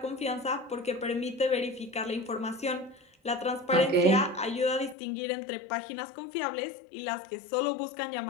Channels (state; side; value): drops out; right; at 5.0 s